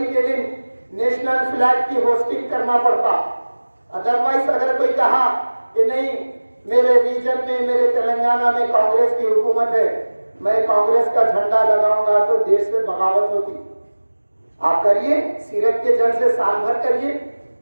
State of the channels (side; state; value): both; inverted; correlation -1.00